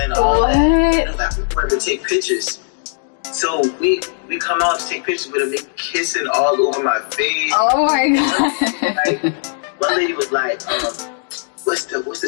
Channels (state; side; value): silent; right; digital silence